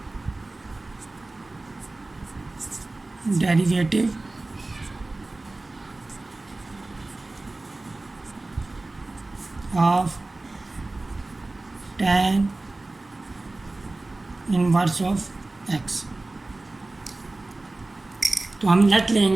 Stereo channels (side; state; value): left; quieter; 3.0 dB